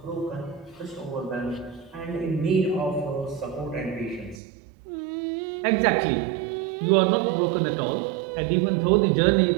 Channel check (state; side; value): drops out; left; at 4.4 s